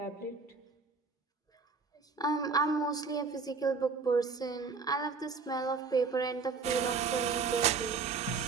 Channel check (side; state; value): left; quieter; 4.9 dB